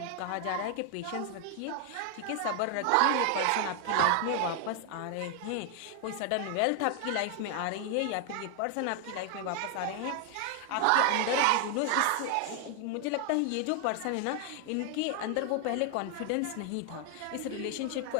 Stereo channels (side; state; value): both; different; correlation 0.00